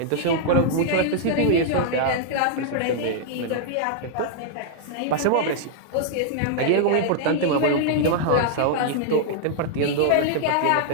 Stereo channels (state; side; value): different; both; correlation -0.01